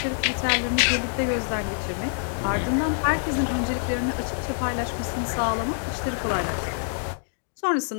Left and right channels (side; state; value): right; silent; digital silence